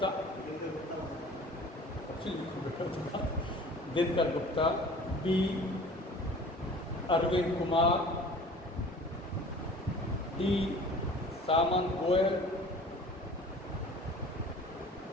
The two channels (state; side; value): normal; both; correlation 0.45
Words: Dinkar Gupta, B Arvind Kumar, D Samant Goel,